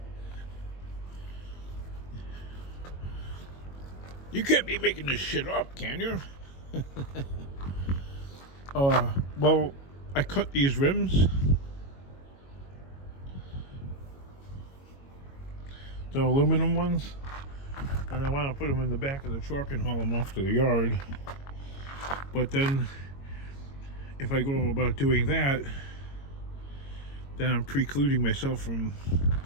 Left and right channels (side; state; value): right; late; 22 ms